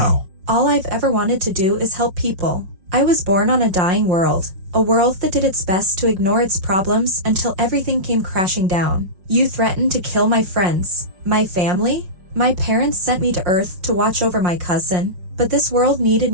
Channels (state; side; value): late; left; 5.5 ms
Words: All I've ever wanted to do is help people. I was born on a dying world, a world that did its best to ignore its problems until everything came crashing down. You threatened to kill my friends, my family? My parents sent me to Earth to watch over my cousin, but this world needed